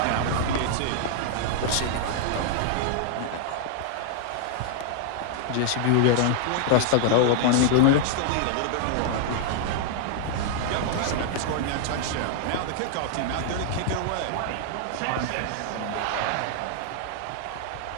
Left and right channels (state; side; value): different; both; correlation 0.00